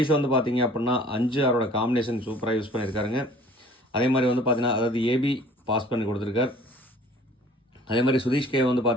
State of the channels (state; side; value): normal; both; correlation 0.51